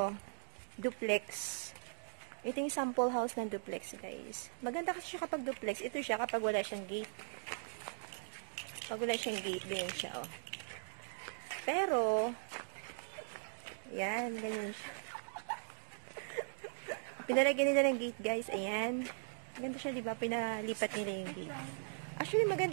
Duplex. Ito yung sample house ng duplex, guys. Maganda kasi siya kapag duplex. Ito siya kapag wala siyang gate. Pag wala siyang gate, ganyan siya, oh. Pero, yan, ganyan siya. Pinalagyan nila ng gate, guys. Ayan. Maganda siya, diba? Pinalipat nila yung gate. Actually,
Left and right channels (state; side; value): silent; left; digital silence